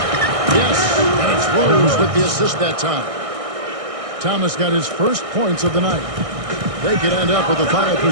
Yes, and it's Rose with the assist that time. Thomas got his first points of the night. They could end up with a final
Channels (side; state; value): left; late; 1.6 ms